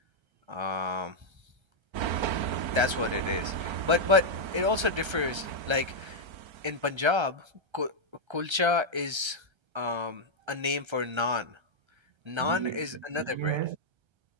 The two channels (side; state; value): left; late; 1.3 ms